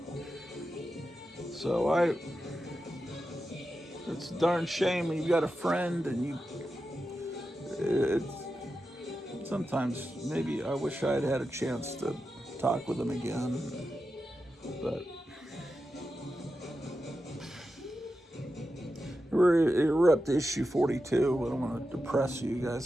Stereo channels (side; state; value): both; normal; correlation 0.90